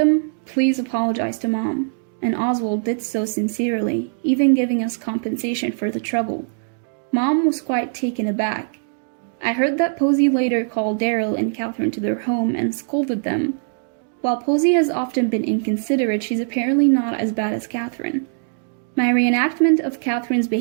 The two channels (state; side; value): silent; left; digital silence